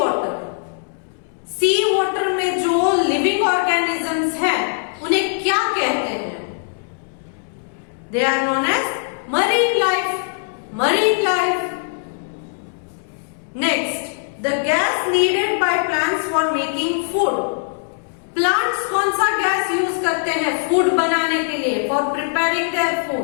Sea water में जो लिविंग ऑर्गेनिजम्स हैं उन्हें क्या कहते हैं? They are known as marine life. Marine life. Next, the gas needed by plants for making food. Plants कौन सा gas use करते हैं फूड बनाने के लिए? For preparing their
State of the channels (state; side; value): silent; right; 65 dB below the other